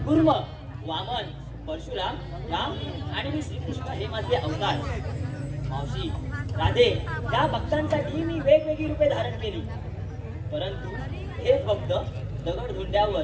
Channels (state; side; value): identical; both; correlation 1.00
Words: कुर्म, वामन, परशुराम, राम आणि मी श्रीकृष्ण हे माझे अवतार. मावशी, राधे, या भक्तांसाठी मी वेगवेगळी रूपे धारण केली. परंतु हेच भक्त दगड धुंड्यावर